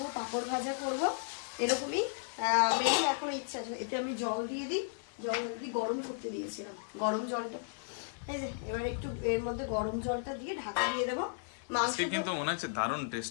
পাঁপড় ভাজা করবো, এরকমই মেনু এখন ইচ্ছা আছে। এতে আমি জল দিয়ে দিই, জল দিয়ে গরম করতে দিয়েছিলাম, গরম জলটা এই যে এবার একটু এর মধ্যে গরম জলটা দিয়ে ঢাকা দিয়ে দেবো। মাংস কিন্তু মনে হচ্ছে দারুণ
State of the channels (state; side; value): silent; right; 55 dB below the other